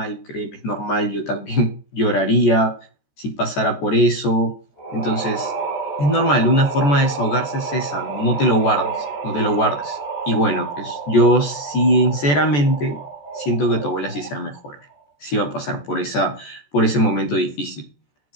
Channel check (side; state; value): right; late; 14 ms